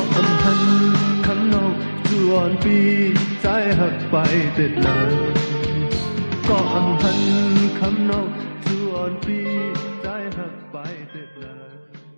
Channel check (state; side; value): inverted; both; correlation -1.00